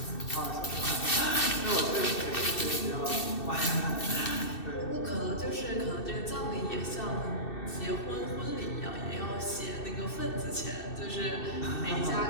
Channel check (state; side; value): late; right; 2.6 ms